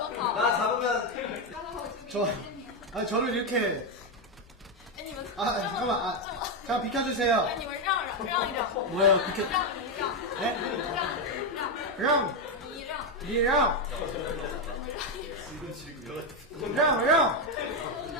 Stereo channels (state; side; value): normal; both; correlation 0.06